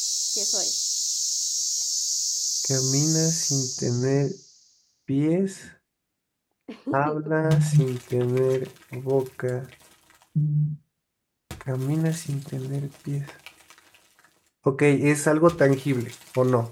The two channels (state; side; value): identical; both; correlation 1.00